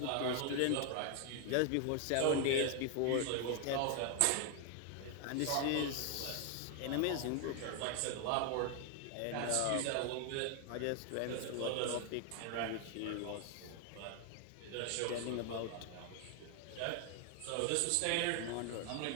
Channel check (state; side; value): different; both; correlation 0.00